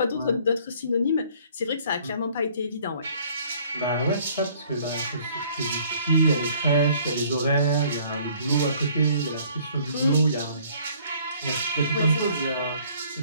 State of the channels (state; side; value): inverted; both; correlation -0.58